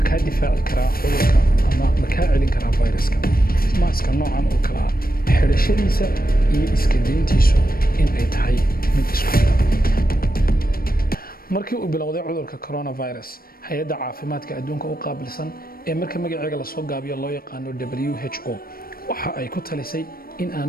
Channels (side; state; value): right; late; 0.43 ms